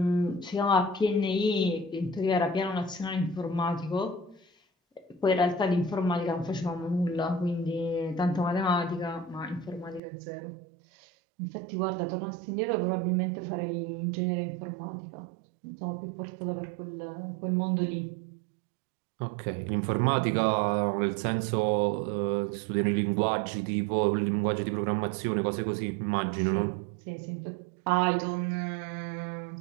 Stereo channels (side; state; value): left; drops out; at 10.0 s